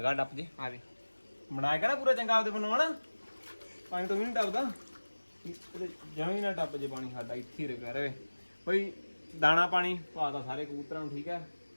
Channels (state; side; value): inverted; both; correlation -1.00